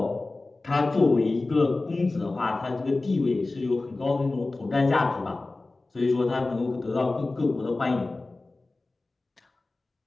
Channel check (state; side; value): quieter; right; 3.2 dB